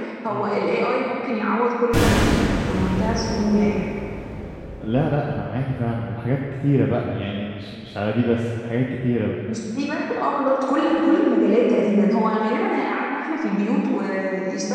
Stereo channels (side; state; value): both; identical; correlation 1.00